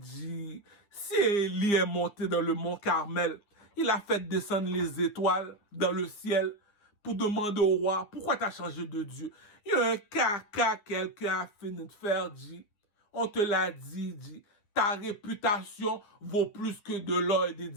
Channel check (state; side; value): late; right; 9.9 ms